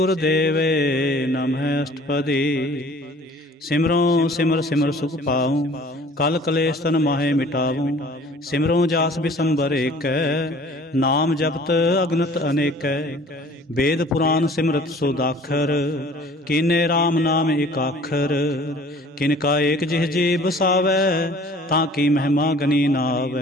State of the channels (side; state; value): both; normal; correlation 0.50